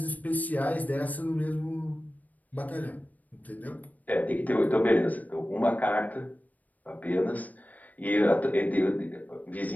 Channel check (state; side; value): late; right; 0.077 ms